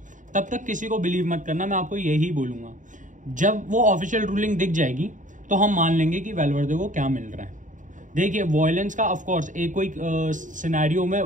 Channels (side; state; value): left; late; 0.37 ms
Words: तब तक किसी को बिलीव मत करना, मैं आपको यही बोलूंगा। जब वो ऑफिशियल रूलिंग दिख जाएगी तो हम मान लेंगे कि वैल्वर्दे को क्या मिल रहा है। देखिए, वॉयलेंस का ऑफ कोर्स एक कोई सिनेरियो में